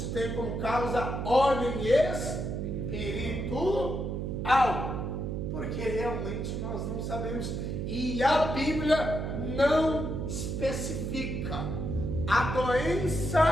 tem como causa ordem espiritual. Porque realmente nós não sabemos. E a Bíblia não especifica a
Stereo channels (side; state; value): right; noise; hum, 3 dB below the sound